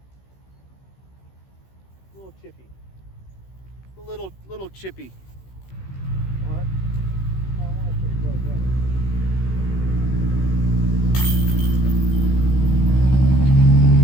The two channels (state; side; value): late; right; 16 ms